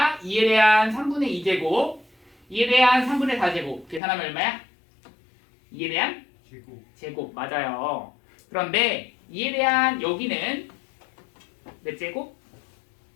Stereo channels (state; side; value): drops out; right; at 4.0 s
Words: 2에 대한 3분의 2제곱 2에 대한 3분의 4제곱 계산하면 얼마야? 2에 대한 제곱 맞아요. 그런데 2에 대한 여기는 몇 제곱?